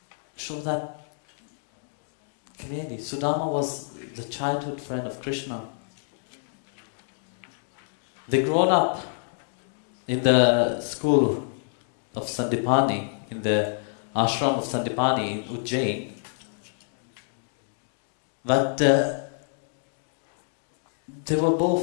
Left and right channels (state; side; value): silent; right; digital silence